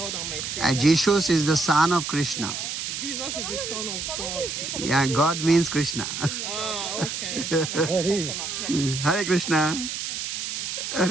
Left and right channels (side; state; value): right; noise; hiss, 4 dB below the sound